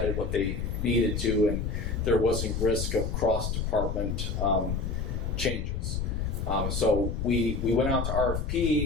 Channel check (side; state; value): left; noise; rumble, 2 dB below the sound